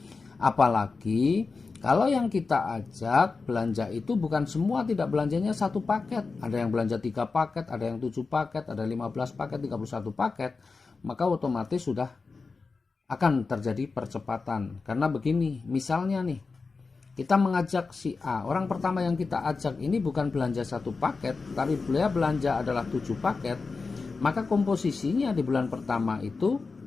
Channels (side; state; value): right; quieter; 4.3 dB